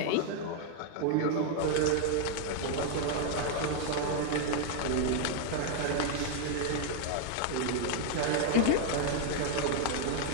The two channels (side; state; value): both; different; correlation 0.00